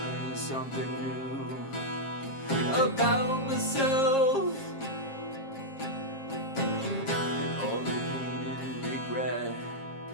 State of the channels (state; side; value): late; right; 7.5 ms